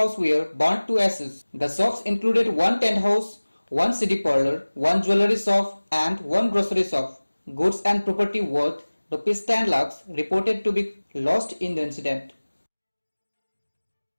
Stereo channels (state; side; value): inverted; both; correlation -1.00